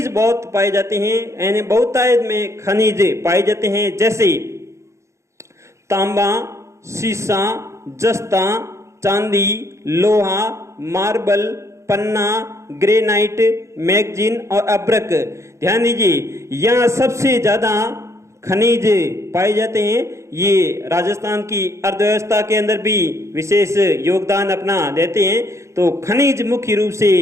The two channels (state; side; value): late; left; 0.14 ms